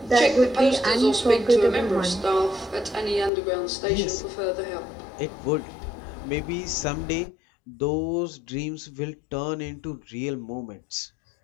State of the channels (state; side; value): drops out; right; at 3.3 s